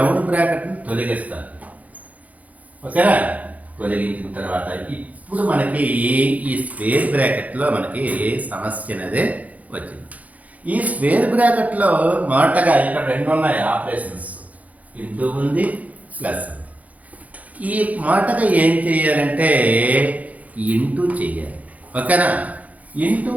బ్రాకెట్ని తొలగిస్తాను. ఓకేనా, తొలగించిన తర్వాత ఇప్పుడు మనకి ఈ స్క్వేర్ బ్రాకెట్లో మనకి సమస్య అనేది వచ్చింది. ఈ స్క్వేర్ బ్రాకెట్లో మొదటగా ఇక్కడ 2 ఉన్నాయి ఆపరేషన్స్, ఇంటూ ఉంది, ప్లస్ ఉంది. ఈ మొదటగా ఏం చేయాలంటే ఇంటూ చేయాలి. ఓకేనా. ఇంటూ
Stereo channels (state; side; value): late; left; 0.073 ms